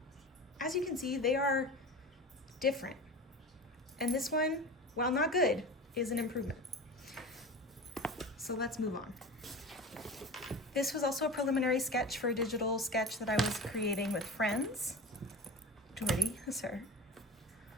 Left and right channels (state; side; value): normal; both; correlation 0.31